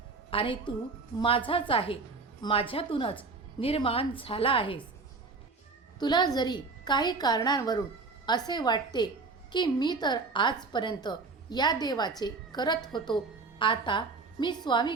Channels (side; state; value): left; quieter; 4.1 dB